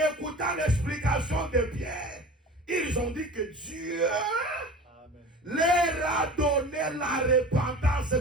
écoutant l'explication de Pierre, ils ont dit que Dieu Amen. leur a donné la repentance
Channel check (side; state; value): both; normal; correlation 0.38